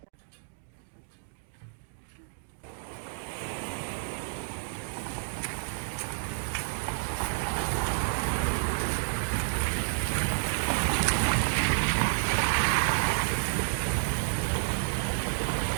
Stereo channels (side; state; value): left; silent; digital silence